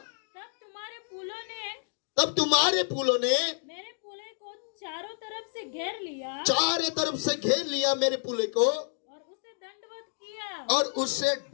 तब तुम्हारे पुलों ने मेरे पुले को चारों तरफ से घेर लिया चारों तरफ से घेर लिया मेरे पुले को, और उसे दंडवत किया। और उससे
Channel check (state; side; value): silent; right; digital silence